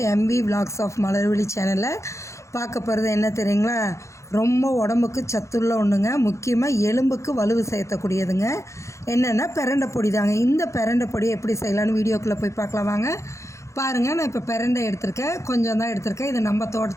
எம்வி விலாக்ஸ் ஆஃப் மலர்விழி சேனலில் பார்க்க போகிறது என்ன தெரியுங்களா? ரொம்ப உடம்புக்கு சத்துள்ள ஒன்றுங்க. முக்கியமாக எலும்புக்கு வலுவு சேர்த்தக்கூடியதுங்க. என்னென்னா பிரண்டை பொடி தாங்க. இந்த பிரண்டை பொடி எப்படி செய்யலான்னு வீடியோக்குள்ளே போய் பார்க்கலாம் வாங்க. பாருங்கள், நான் இப்போ பிரண்டை எடுத்திருக்கேன். கொஞ்சம் தான் எடுத்திருக்கேன். இது நம்ம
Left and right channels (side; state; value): right; late; 0.14 ms